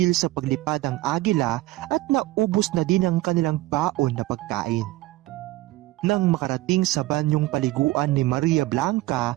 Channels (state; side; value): quieter; left; 17.7 dB